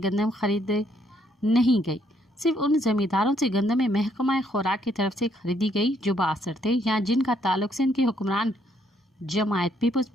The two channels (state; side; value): normal; both; correlation 0.70